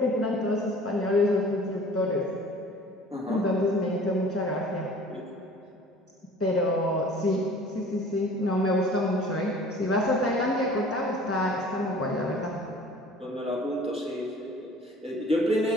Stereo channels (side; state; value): both; normal; correlation 0.48